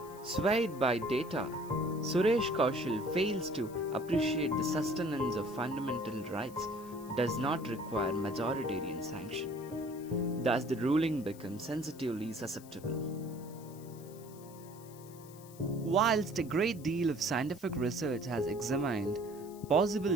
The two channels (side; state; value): left; noise; hiss, 21 dB below the sound